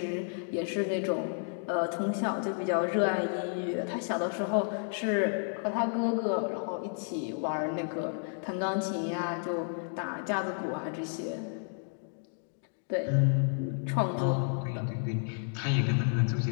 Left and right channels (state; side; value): silent; right; 57 dB below the other